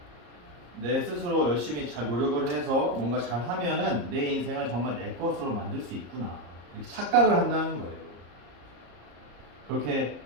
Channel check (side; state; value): left; late; 34 ms